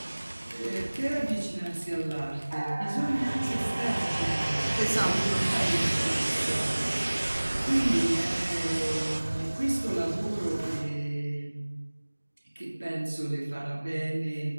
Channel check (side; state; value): both; inverted; correlation -1.00